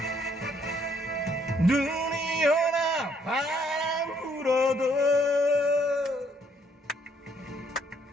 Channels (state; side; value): normal; both; correlation 0.68